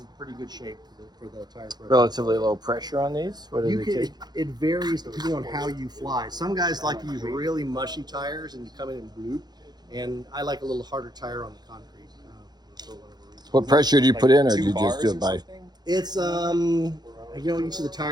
pretty good shape for the tire pressure. Relatively low pressure on these? What do they take? It varies depending on how you fly. Some guys like to use really mushy tires and you come in and bloop, and I like a little harder tire on the concrete. For whatever reason. What pressure do you put in, or do you just do it by? It's you know, each of the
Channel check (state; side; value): late; left; 0.20 ms